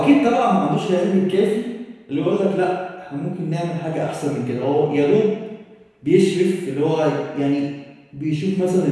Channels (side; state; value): both; identical; correlation 1.00